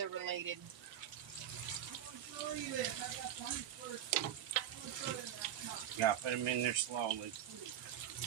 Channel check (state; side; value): quieter; left; 10.8 dB